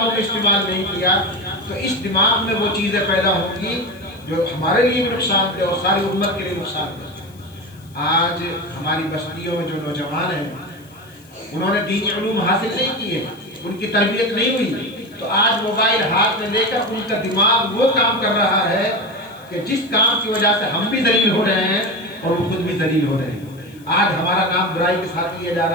میں استعمال نہیں کیا تو اس دماغ میں وہ چیزیں پیدا ہوں گی جو ہمارے لیے بھی نقصان دہ اور ساری امت کے لیے نقصان دہ. آج ہماری بستیوں میں جو نوجوان ہیں انہوں نے دینی علوم حاصل نہیں کیے، ان کی تربیت نہیں ہوئی، تو آج موبائل ہاتھ میں لے کر ان کا دماغ وہ کام کر رہا ہے کہ جس کام کی وجہ سے ہم بھی ذلیل ہو رہے ہیں اور وہ خود بھی ذلیل ہو رہے ہیں. آج ہمارا کام برائی کے ساتھ کیا جا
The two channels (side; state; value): left; noise; hiss, 27 dB below the sound